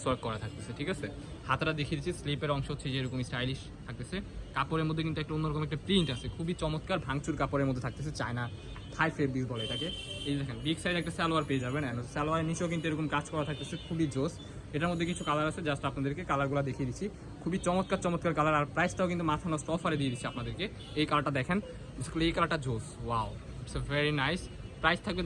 ওয়ার্ক করা থাকতেছে, ঠিক আছে। হাতাটা দেখিয়ে দিচ্ছি, স্লিপের অংশ হচ্ছে যে এরকম স্টাইলিশ থাকতেছে। কাপড়ের মধ্যে কিন্তু একটা অন্যরকম একটা প্রিন্ট আছে, খুবই চমৎকার ভাঙচুর কাপড়ের মধ্যে থাকতেছে। চায়না থাই ফেব্রিক বলে এটাকে। এই দেখেন বিগ সাইজ একটা সালোয়ার পেয়ে যাবেন, সালোয়ারের নিচেও কিন্তু এরকম কাজ করা থাকতেছে, খুবই জোস। এটার মধ্যে কিছু কালার আছে, জাস্ট আপনাদেরকে কালারগুলো দেখিয়ে দিচ্ছি। খুবই চমৎকার চমৎকার কালার, আর প্রাইসটাও কিন্তু মাথা নষ্ট অফারে দিয়ে দিচ্ছি আপনাদেরকে। এই কালারটা দেখেন, এই কালারটা জোস, wow, it's a very nice. Price থাকবে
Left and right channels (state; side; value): identical; both; correlation 1.00